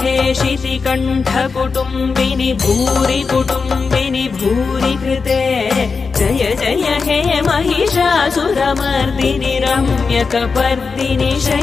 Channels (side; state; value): right; quieter; 4.9 dB